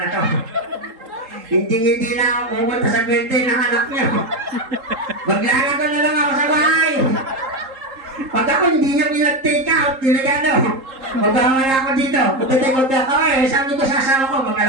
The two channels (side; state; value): left; late; 3.8 ms